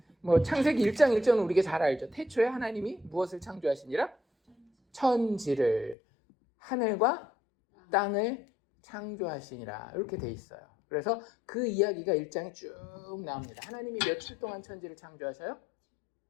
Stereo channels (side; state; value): right; drops out; at 6.0 s